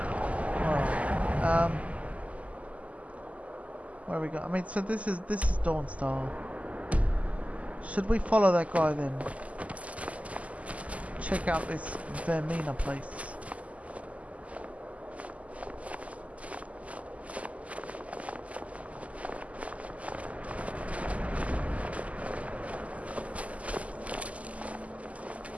Alright, where we go? I mean, so this is Dawnstar. Should we follow that guy then? Check out this Vermina place.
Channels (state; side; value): late; left; 0.069 ms